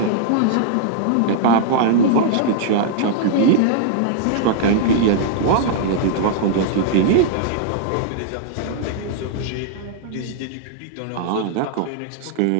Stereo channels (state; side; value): different; both; correlation -0.01